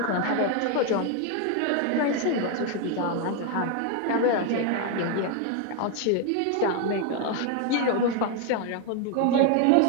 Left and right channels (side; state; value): both; different; correlation 0.01